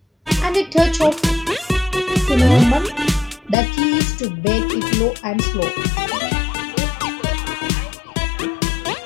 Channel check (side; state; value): right; drops out; at 3.6 s